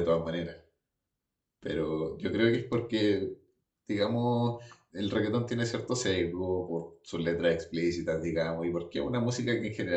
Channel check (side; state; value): both; identical; correlation 1.00